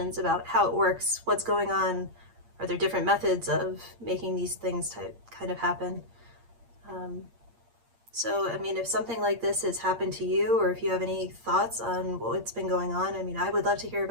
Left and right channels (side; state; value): left; late; 8.6 ms